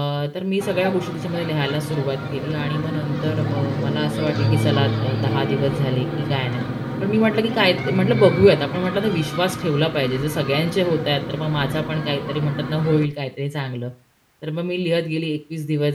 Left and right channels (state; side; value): identical; both; correlation 1.00